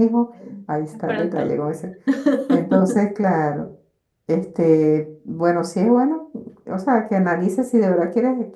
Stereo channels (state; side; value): identical; both; correlation 1.00